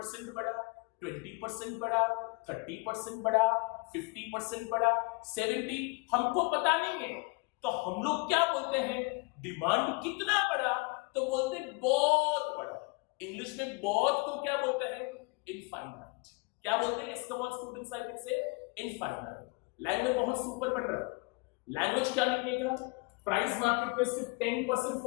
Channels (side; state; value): right; quieter; 29.2 dB